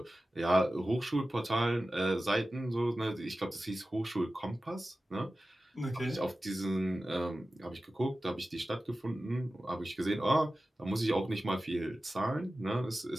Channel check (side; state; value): both; normal; correlation 0.95